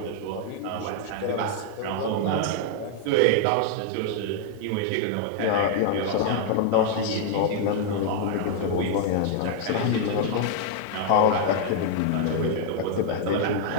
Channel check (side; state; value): both; different; correlation -0.01